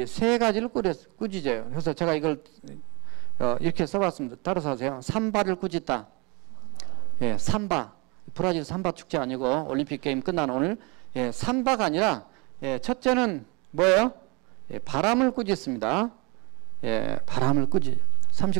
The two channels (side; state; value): left; quieter; 29.5 dB